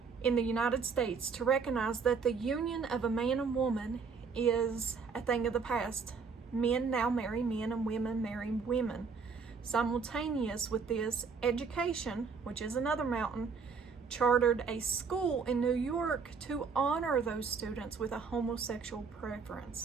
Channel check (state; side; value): quieter; left; 5.3 dB